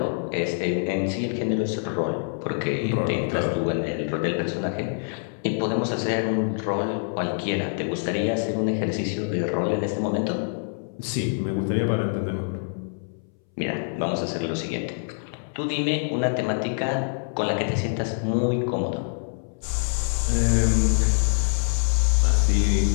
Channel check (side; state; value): right; silent; 62 dB below the other